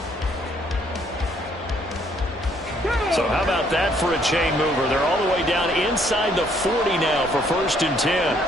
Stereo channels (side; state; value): both; normal; correlation 0.66